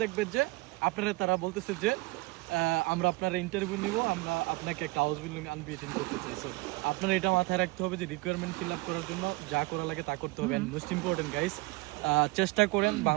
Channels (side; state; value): left; quieter; 23.4 dB